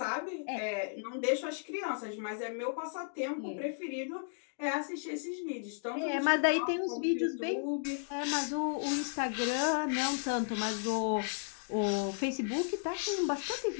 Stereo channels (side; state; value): right; silent; digital silence